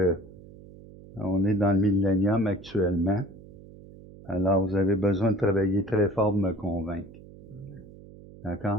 on est dans le millénium actuellement, alors vous avez besoin de travailler très fort pour me convaincre.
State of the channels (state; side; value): noise; right; hum, 19 dB below the sound